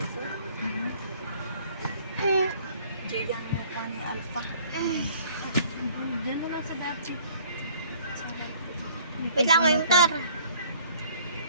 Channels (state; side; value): inverted; both; correlation -0.56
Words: Diyan mo pa ni Alpha. Diyan mo lang sa dati. Wait lang, may motor.